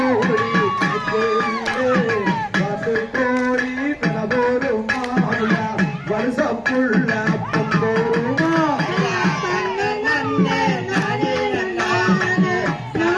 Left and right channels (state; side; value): identical; both; correlation 1.00